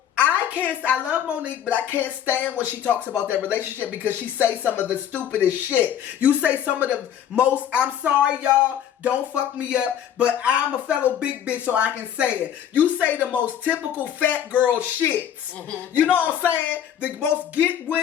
I love Monique, but I can't stand when she talks about that relationship because she say some of the stupidest shit. You say some of the most, I'm sorry y'all, don't fuck me up, but I'm a fellow big bitch so I can say it. You say the most typical fat girl shits. Mm-hmm. You know what I'm saying? The most get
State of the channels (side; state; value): right; quieter; 9.7 dB